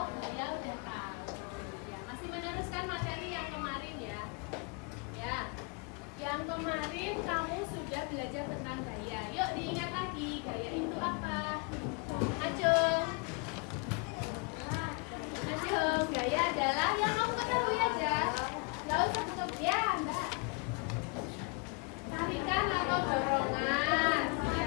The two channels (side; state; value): right; quieter; 32.4 dB